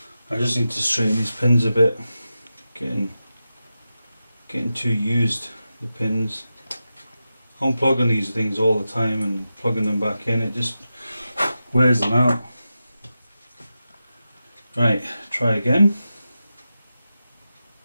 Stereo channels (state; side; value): inverted; both; correlation -0.91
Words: I just need to straighten these pins a bit. Getting too used, the pins. Unplugging these things all the time and plugging them back in, it just wears them out. Right, try again.